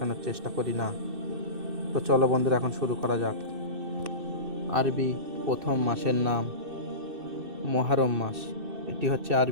চেষ্টা করি না। তো চলো বন্ধুরা, এখন শুরু করা যাক। আরবি প্রথম মাসের নাম মুহররম মাস। এটি হচ্ছে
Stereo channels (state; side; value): late; left; 2.6 ms